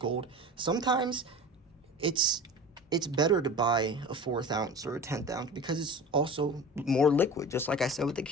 Sometimes it's better to buy a 4th ounce or a 10th ounce because it's also more liquid. Just like I said with the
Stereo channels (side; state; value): both; normal; correlation 0.35